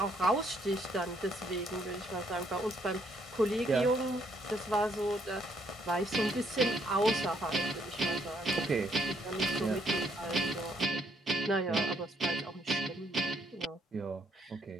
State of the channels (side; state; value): both; normal; correlation 0.70